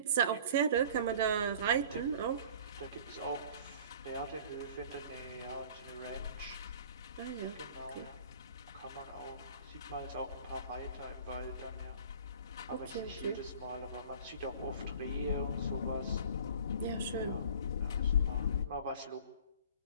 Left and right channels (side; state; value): both; inverted; correlation -0.46